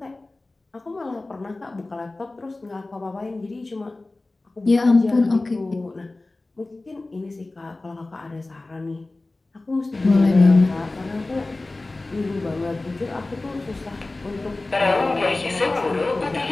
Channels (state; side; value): quieter; right; 3.1 dB